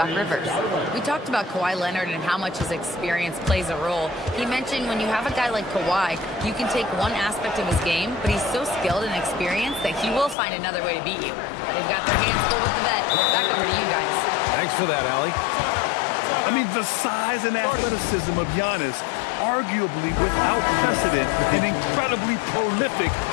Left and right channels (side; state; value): right; drops out; at 10.4 s